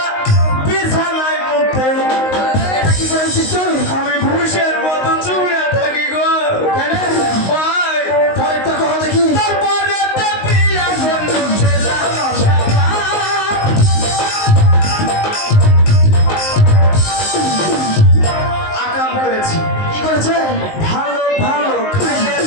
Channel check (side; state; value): right; late; 19 ms